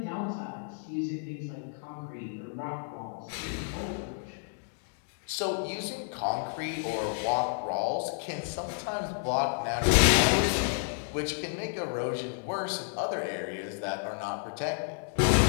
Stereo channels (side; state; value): right; silent; digital silence